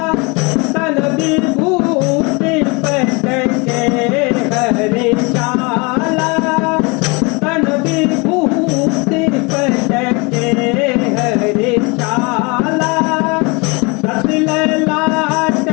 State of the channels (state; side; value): quieter; right; 28.6 dB